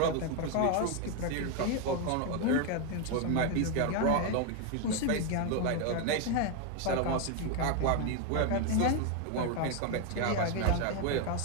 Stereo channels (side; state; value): both; different; correlation 0.01